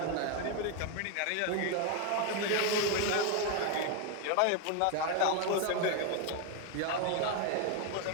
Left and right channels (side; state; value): both; different; correlation 0.01